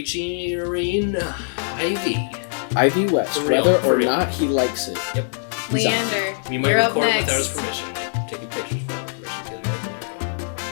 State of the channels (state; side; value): silent; right; digital silence